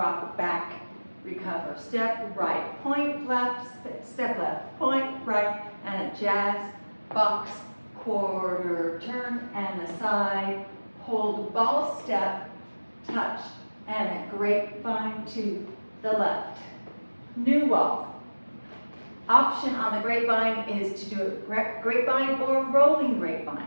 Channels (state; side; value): inverted; both; correlation -1.00